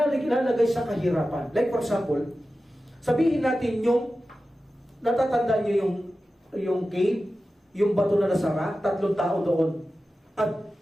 sa kahirapan. Like for example, sabihin natin yung natatandaan nyo yung cave, yung bato na nasara, 3 tao doon. At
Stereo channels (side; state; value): both; normal; correlation 0.94